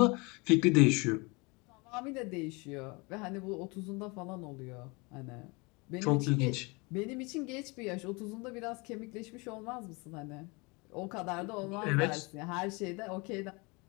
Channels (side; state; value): right; quieter; 27.9 dB